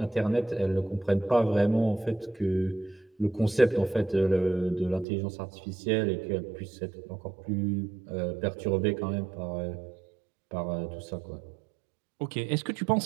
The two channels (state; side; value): drops out; left; at 5.1 s